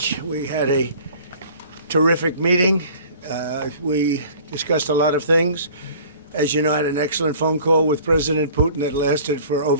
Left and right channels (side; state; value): both; inverted; correlation -0.48